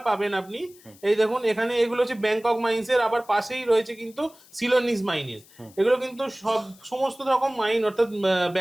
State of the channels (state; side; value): noise; left; hiss, 26 dB below the sound